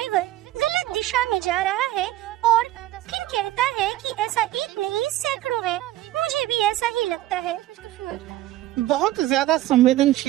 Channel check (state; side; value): quieter; left; 14.9 dB